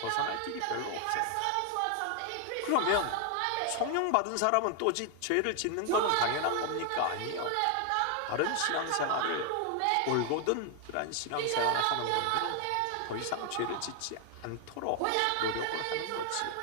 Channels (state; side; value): different; both; correlation 0.00